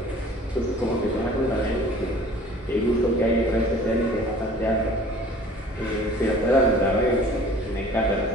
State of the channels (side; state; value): both; normal; correlation 0.48